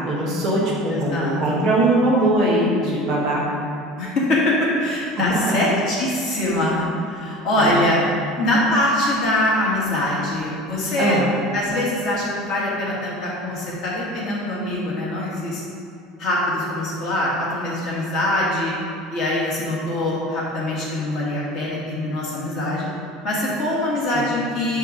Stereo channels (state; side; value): normal; both; correlation 0.38